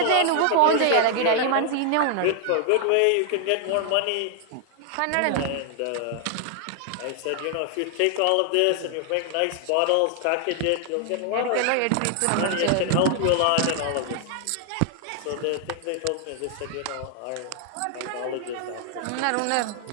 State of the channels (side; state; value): both; different; correlation 0.00